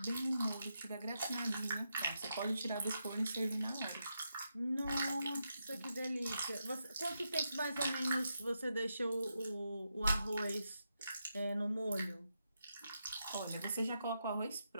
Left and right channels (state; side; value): inverted; both; correlation -0.85